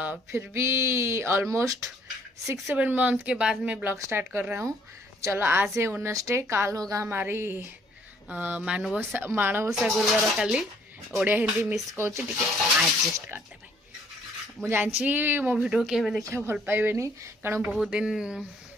फिर भी ऑलमोस्ट 6-7 मंथ के बाद मैं ब्लॉग स्टार्ट कर रहा हूँ. चलो, आज है वेडनेसडे, काल होगा हमारी माणवसा गुरुवार काली. ओडिया हिंदी मिस कौच एडजस्ट करते भाई. मुझे जानची मो वीडियो के देखा भल पाइबेनी कारण बहुत दिन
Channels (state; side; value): normal; both; correlation 0.62